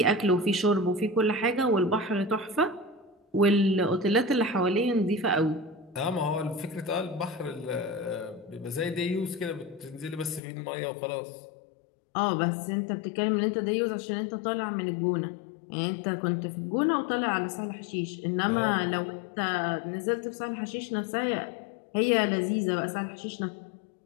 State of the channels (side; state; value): right; drops out; at 10.4 s